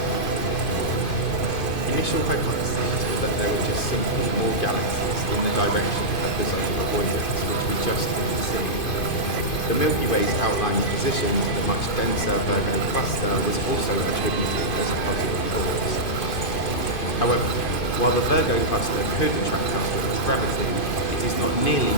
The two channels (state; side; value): late; right; 2.5 ms